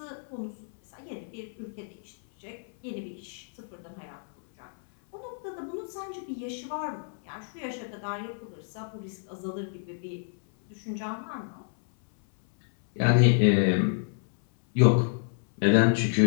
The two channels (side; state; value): right; silent; 58 dB below the other